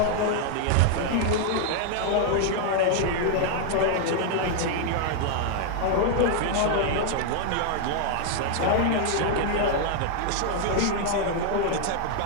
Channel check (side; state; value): both; different; correlation 0.00